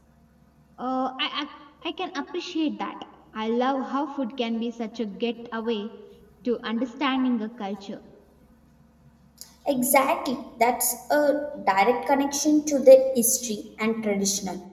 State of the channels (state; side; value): identical; both; correlation 1.00